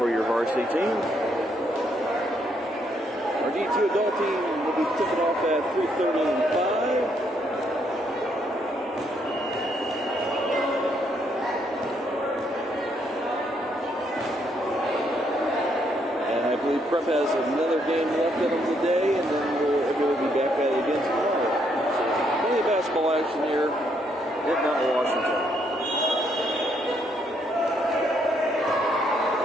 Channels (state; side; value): normal; both; correlation 0.73